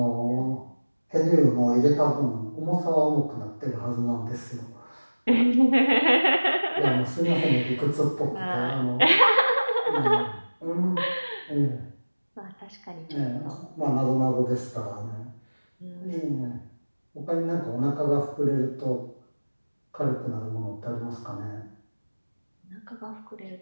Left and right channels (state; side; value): inverted; both; correlation -1.00